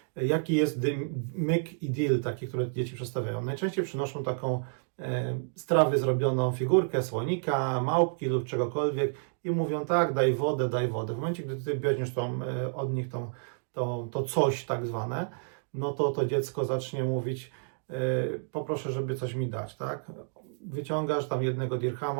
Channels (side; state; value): left; silent; digital silence